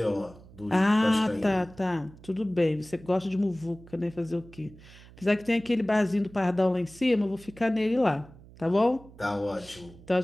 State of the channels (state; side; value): noise; right; hum, 21 dB below the sound